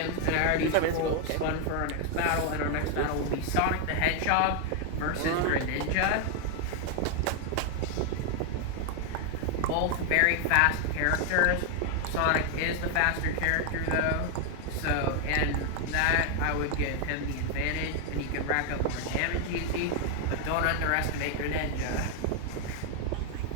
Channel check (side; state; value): both; different; correlation 0.00